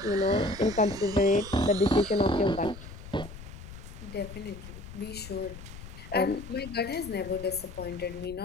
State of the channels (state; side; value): noise; left; rumble, 14 dB below the sound